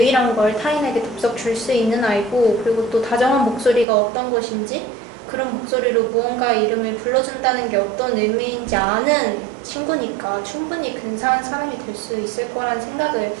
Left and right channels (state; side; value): drops out; left; at 3.9 s